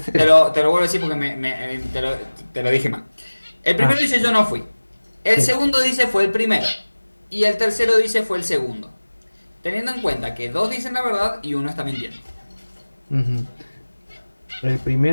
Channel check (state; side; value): inverted; both; correlation -1.00